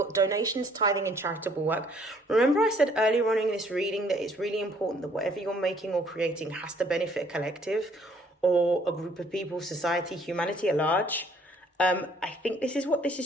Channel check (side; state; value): both; normal; correlation 0.62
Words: donations, tithing and charitable work. Remember I said earlier on in this reading that it's really important that whatever you're making or creating has to benefit a collective or a group of people, society, humanity at large. I think this is what this